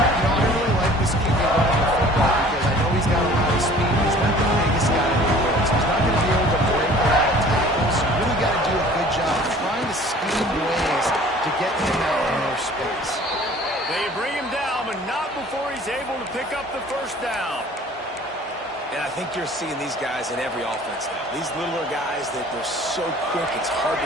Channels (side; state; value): both; normal; correlation 0.49